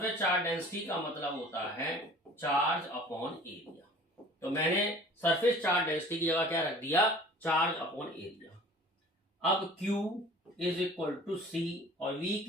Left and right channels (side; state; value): both; normal; correlation 0.46